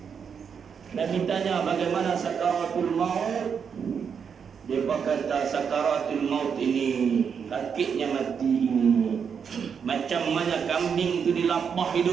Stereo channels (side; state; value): left; quieter; 6.8 dB